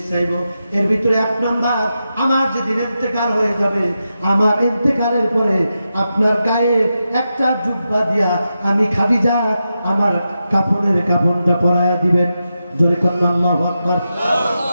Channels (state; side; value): inverted; both; correlation -0.89